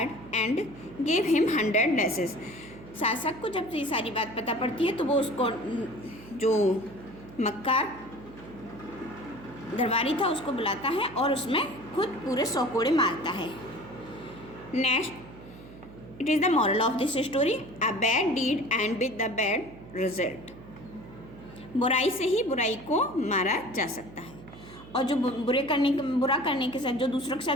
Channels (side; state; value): right; noise; hum, 17 dB below the sound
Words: and gave him 100 lashes. शासक को जब ये सारी बात पता पड़ती है तो वो उसको जो मक्कार दरबारी था उसको बुलाता है और उसमें खुद पूरे 100 कोड़े मारता है। Next, it is the moral of this story, a bad deed end with the bad result. बुराई से ही बुराई को मारा जा सकता है और जो बुरा करने के साथ जो दूसरों के